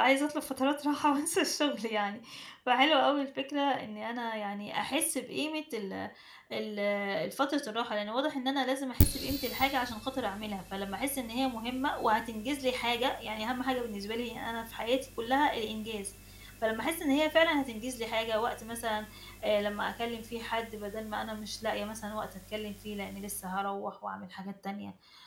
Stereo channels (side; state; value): both; identical; correlation 1.00